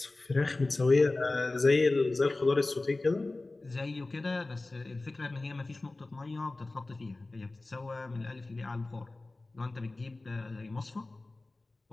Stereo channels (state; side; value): quieter; right; 3.1 dB